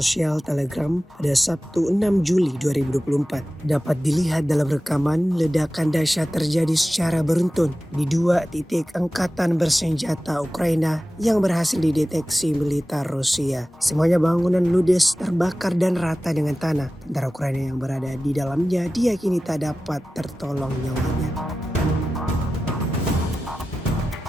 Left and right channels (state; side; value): normal; both; correlation 0.95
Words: Telegram pada Sabtu 6 Juli 2024. Dapat dilihat dalam rekaman ledakan dahsyat terjadi secara beruntun di 2 titik angkatan bersenjata Ukraina yang berhasil dideteksi militer Rusia. Semuanya bangunan ludes, terbakar dan rata dengan tanah. Tentara Ukraina yang berada di dalamnya diyakini tak dapat tertolong nyawanya.